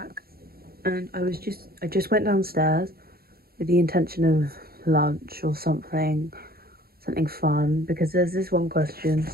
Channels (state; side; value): late; left; 0.44 ms